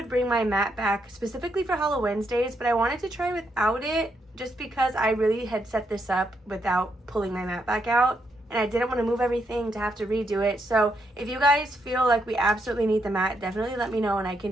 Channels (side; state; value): both; normal; correlation 0.79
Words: bring my mat back specifically for Hollow Wednesdays, but I wanted to try without it just because I really had set this up without pulling my mat back out. And I didn't want to move everything to have to redo it. So if you guys feel like we absolutely need the mat, definitely let me know and I can